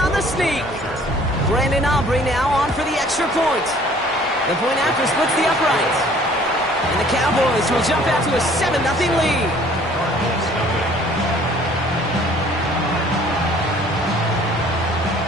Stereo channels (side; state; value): both; normal; correlation 0.54